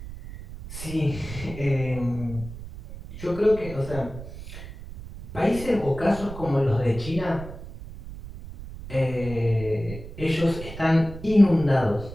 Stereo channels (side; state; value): right; noise; rumble, 12 dB below the sound